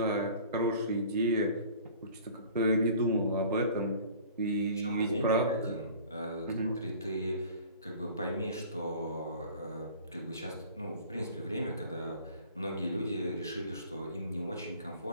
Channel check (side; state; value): both; inverted; correlation -0.46